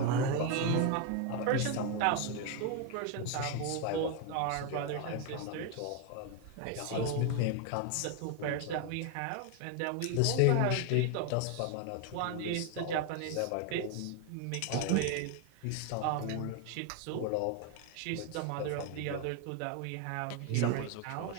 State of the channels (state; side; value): different; both; correlation 0.01